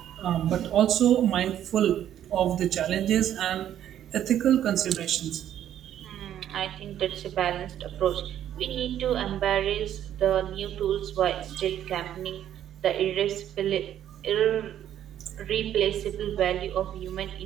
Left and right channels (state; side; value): quieter; left; 10.9 dB